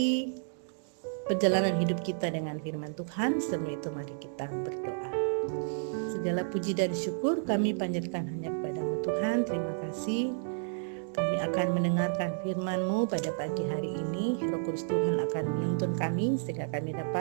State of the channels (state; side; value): silent; left; digital silence